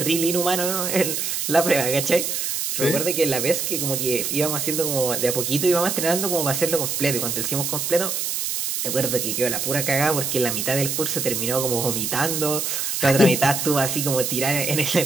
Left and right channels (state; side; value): noise; right; hiss, 1 dB below the sound